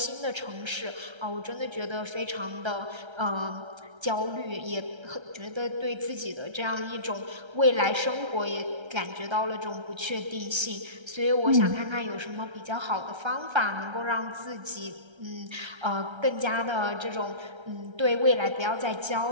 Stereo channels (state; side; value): late; left; 1.3 ms